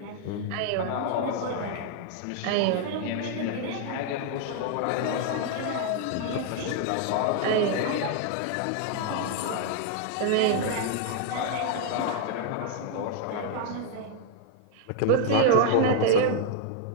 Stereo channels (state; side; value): different; both; correlation 0.00